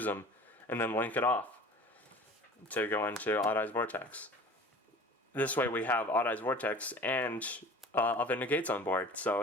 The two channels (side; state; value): both; normal; correlation 0.42